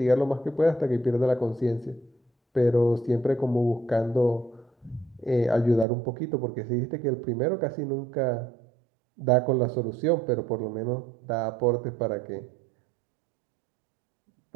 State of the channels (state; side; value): drops out; left; at 5.9 s